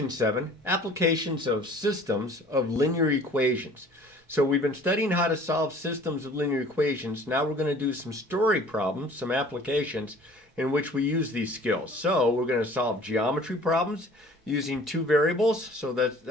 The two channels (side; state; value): both; normal; correlation 0.50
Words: 7, Applications of Systems of Linear Equations. So we've been studying how to solve systems of linear equations. Now we're going to do some story problems, some applications in which we use these skills. So we're going to solve geometry problems using two variables, so that's